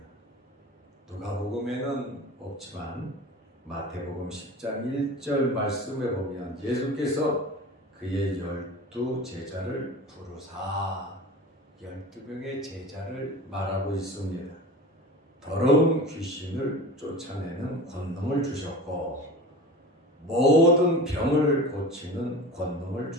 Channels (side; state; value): both; normal; correlation 0.34